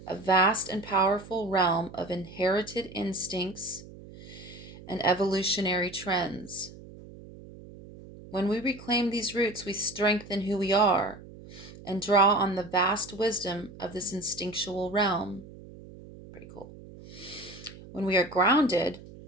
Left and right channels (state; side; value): noise; right; hum, 17 dB below the sound